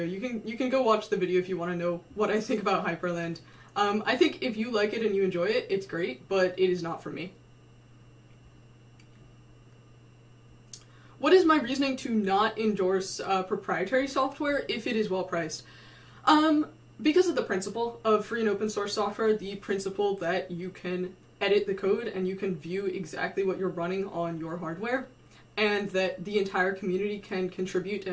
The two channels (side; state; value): both; identical; correlation 1.00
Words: You can go watch the video if you want to know what I think about Hyperland. I think if you like it and you enjoy it, it's great, but it is not for me. What is my reasoning to not endorse proprietary software if it is well priced? Because of the principle of free and open source software, the principle that you can edit the code and you can view exactly what you're running on your hardware, and that the entire community can contribute